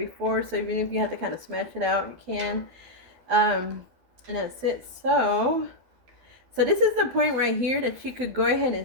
So even if you have to kind of smash it out, you can. And that's it. So this is the point right here that you could go ahead and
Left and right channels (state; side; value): late; left; 12 ms